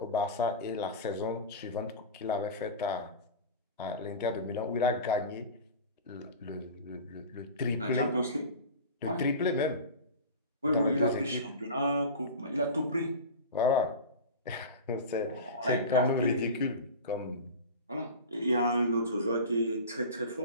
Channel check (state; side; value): inverted; both; correlation -0.30